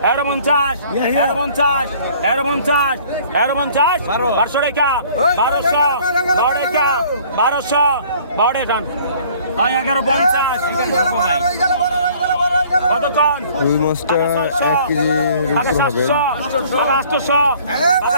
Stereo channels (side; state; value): both; inverted; correlation -0.55